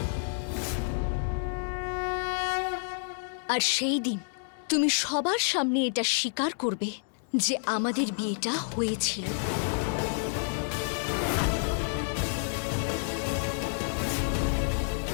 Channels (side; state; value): right; silent; digital silence